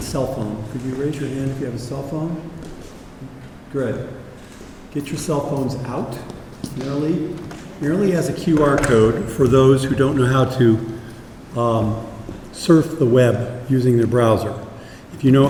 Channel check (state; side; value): identical; both; correlation 1.00